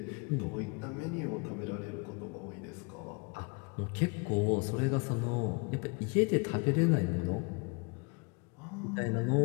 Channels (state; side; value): quieter; right; 31.6 dB